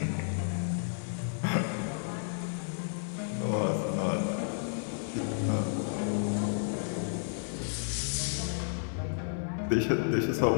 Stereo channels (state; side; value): silent; right; digital silence